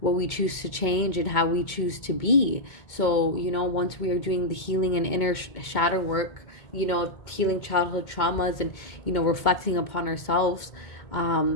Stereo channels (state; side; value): late; right; 2.2 ms